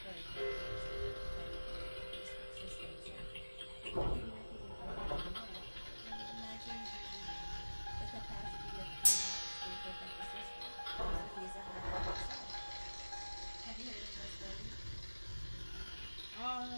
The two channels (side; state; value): both; inverted; correlation -1.00